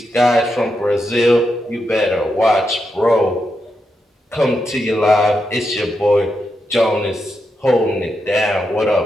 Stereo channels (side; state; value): both; normal; correlation 0.85